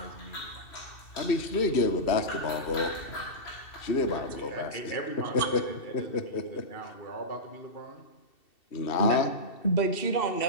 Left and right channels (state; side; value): late; right; 2.7 ms